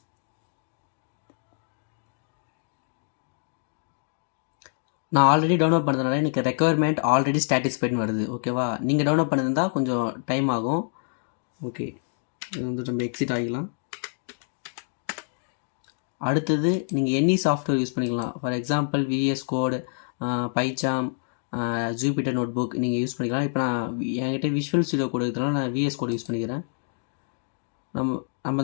நான் ஆல்ரெடி டவுன்லோட் பண்ணதுனால எனக்கு ரெக்குயர்மெண்ட் ஆல்ரெடி சாட்டிஸ்ஃபைட்னு வருது. ஓகேவா? நீங்கள் டவுன்லோட் பண்ணியிருந்தா கொஞ்சம் டைம் ஆகும். ஓகே, இது வந்து நம்ம எக்ஸிட் ஆகிக்கலாம். அடுத்தது நீங்கள் எனி சாஃப்ட்வேர் யூஸ் பண்ணிக்கலாம். For example VS code, PyCharm, Jupyter notebook நீங்கள் யூஸ் பண்ணிக்கலாம். இப்போ நான் என்கிட்ட விஷுவல் ஸ்டுடியோ கோட் இருக்கிறதுனால நான் VS கோட் யூஸ் பண்ணிக்கிறேன். நம்ம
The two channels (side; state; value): right; silent; digital silence